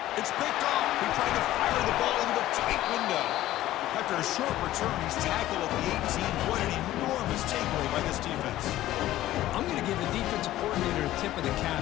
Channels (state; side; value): quieter; right; 14.7 dB